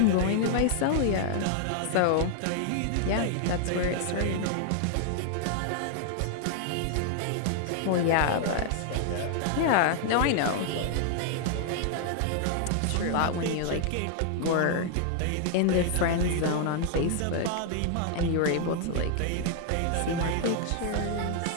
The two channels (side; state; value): both; different; correlation 0.00